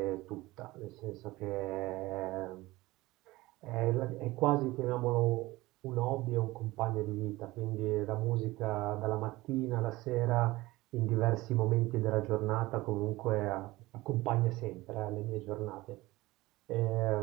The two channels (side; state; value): left; quieter; 19.5 dB